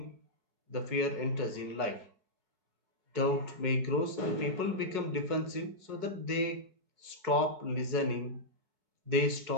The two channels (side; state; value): left; late; 4.7 ms